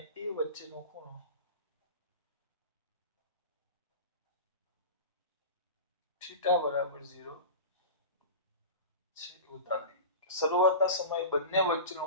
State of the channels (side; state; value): both; inverted; correlation -0.31